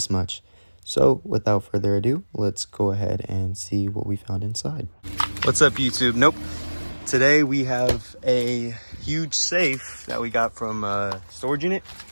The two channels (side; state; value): both; inverted; correlation -1.00